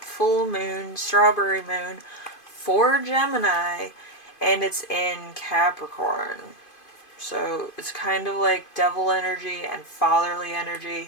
full moon, strawberry moon for Gemini, and it's in Capricorn. So it's kind of like devil energy and fatherly energy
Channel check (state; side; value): late; right; 2.5 ms